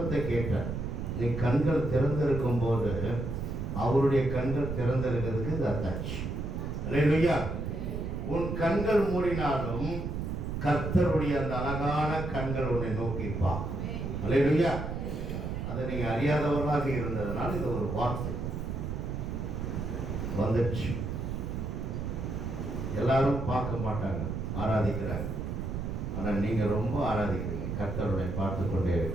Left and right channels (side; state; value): right; noise; rumble, 4 dB below the sound